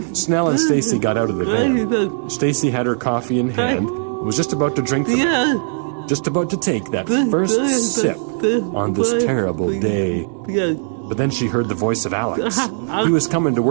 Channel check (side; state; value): left; silent; digital silence